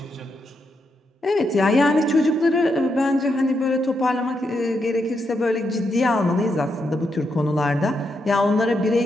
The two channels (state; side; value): normal; both; correlation 0.82